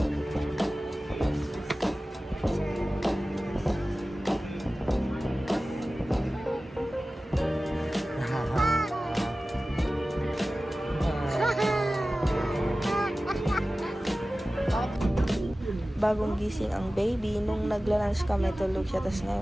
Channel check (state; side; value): normal; both; correlation 0.96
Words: Bagong gising ang baby. Nung nagla-lunch kami, tulog siya. Tapos